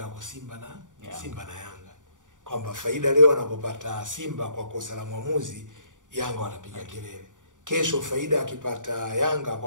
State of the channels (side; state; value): left; late; 0.87 ms